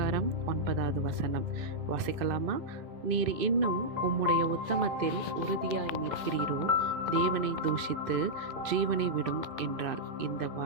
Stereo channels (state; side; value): late; left; 2.5 ms